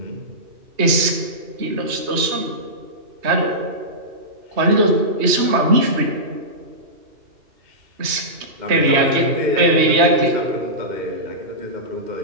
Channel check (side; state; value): left; late; 3.2 ms